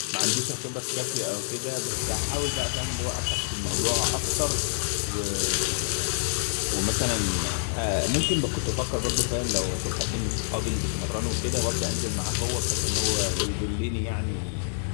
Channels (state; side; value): silent; right; 56 dB below the other